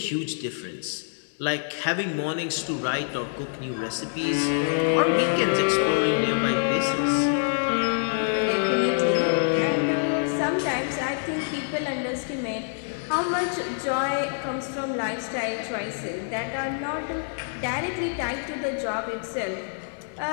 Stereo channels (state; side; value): silent; right; 61 dB below the other